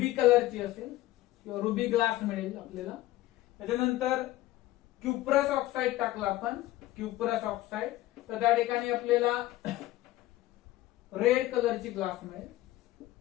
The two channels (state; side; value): quieter; right; 16.1 dB